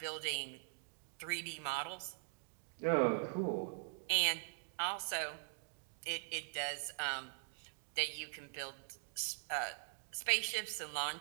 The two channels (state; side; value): silent; left; digital silence